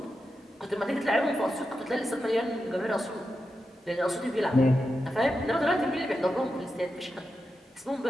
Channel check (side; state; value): both; normal; correlation 0.89